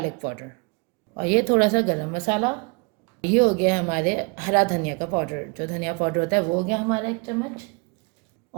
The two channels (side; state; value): left; quieter; 31.5 dB